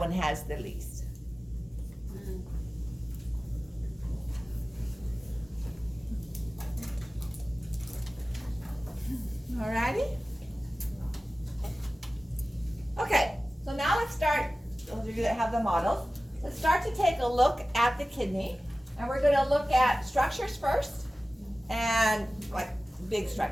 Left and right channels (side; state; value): both; normal; correlation 0.96